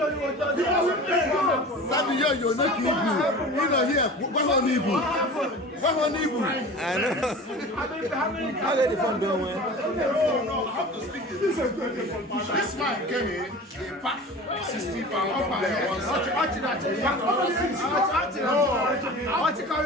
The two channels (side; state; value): both; normal; correlation 0.37